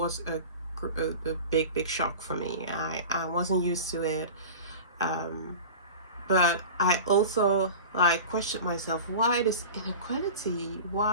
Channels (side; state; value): both; inverted; correlation -0.35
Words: a big shock for me. I wasn't used to it. But I also like questioned myself, why this inequality?